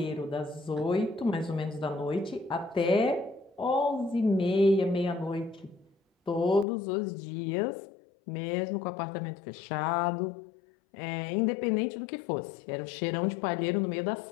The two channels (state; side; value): drops out; right; at 6.7 s